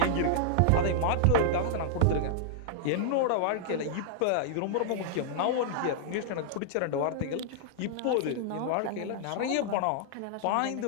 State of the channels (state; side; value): different; both; correlation -0.01